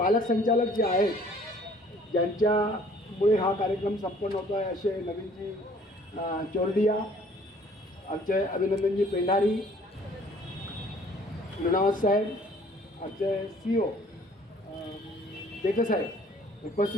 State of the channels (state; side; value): normal; both; correlation 0.56